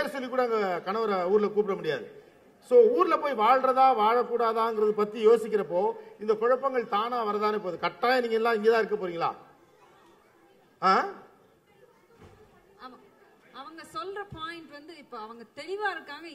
சொல்லி கூட அங்க கணவரை ஊர்ல கூப்பிட முடியாது. சோ ஊர்ல போய் வாழ்றதா வாழக்கூடாதாங்கிறது பத்தி யோசிக்கிறப்போ இந்த குழப்பங்கள் தானா வரதானே போகுது. கட்டாயம் நீங்க எல்லாம் இங்கதான் இருக்க போறீங்களா? அவங்க சொல்ற பாயிண்ட் வந்து இப்ப அவங்க தெளிவா இருக்காங்க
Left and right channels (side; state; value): both; identical; correlation 1.00